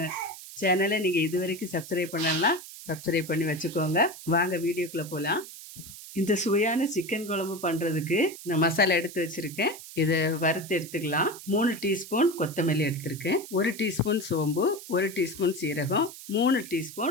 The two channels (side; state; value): right; noise; hiss, 14 dB below the sound